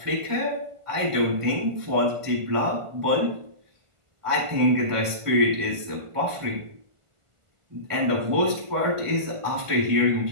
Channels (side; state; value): left; late; 1.5 ms